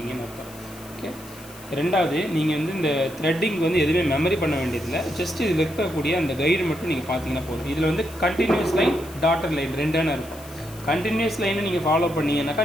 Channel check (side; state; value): left; noise; hiss, 19 dB below the sound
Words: அர்த்தம். ஓகே. ரெண்டாவது, நீங்கள் வந்து இந்த த்ரெட்டிங் வந்து எதுவுமே மெமரி பண்ண வேண்டியதில்லை. ஜஸ்ட் இதில் இருக்கக்கூடிய அந்த கைடு மட்டும் நீங்கள் பார்த்தீங்கன்னா போதும். இதில் வந்து கண்டினியூஸ் லைன், டாட்டர் லைன் ரெண்டான இருக்கும். கண்டினியூஸ் லைனை நீங்கள் ஃபாலோ பண்ணீங்கன்னாக்கா